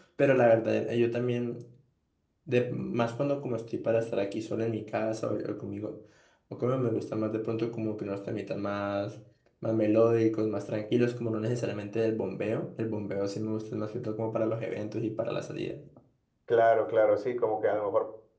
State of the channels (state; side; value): identical; both; correlation 1.00